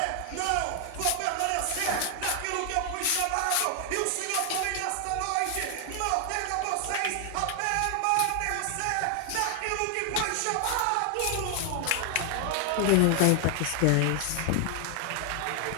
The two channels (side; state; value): both; different; correlation 0.00